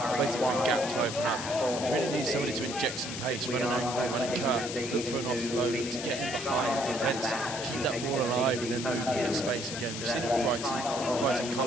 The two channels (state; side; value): noise; left; hiss, 7 dB below the sound